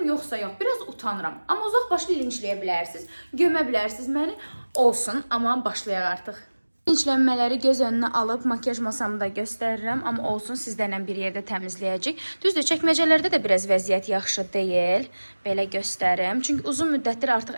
yoxsa yox. Biraz utanıram. Amma uzaq başlı linçləyə bilərsiniz. Gömə bilərsiniz məni. Olsun, amma başlayaq artıq. İnclənmələri göz önünə alıb makyaj masamı da göstərirəm, amma olsun sizlərlə bir yerdə təmizləyəcək. Düzdür, çəkməcələrdə də biraz vəziyyət yaxşı deyil. Belə göstərim. Çünki uzun müddətdir artıq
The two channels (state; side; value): inverted; both; correlation -1.00